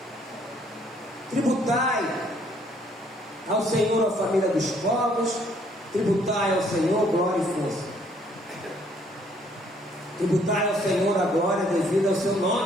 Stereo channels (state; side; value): normal; both; correlation 0.64